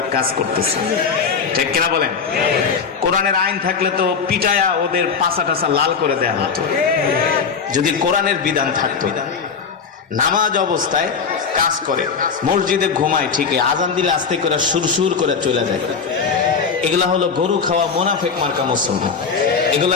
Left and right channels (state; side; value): quieter; right; 5.8 dB